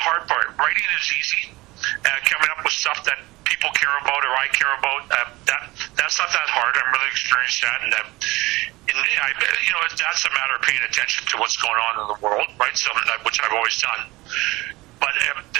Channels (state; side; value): quieter; left; 20.7 dB